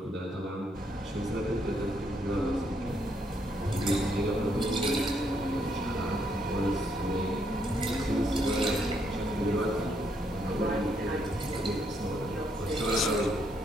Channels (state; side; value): normal; both; correlation 0.74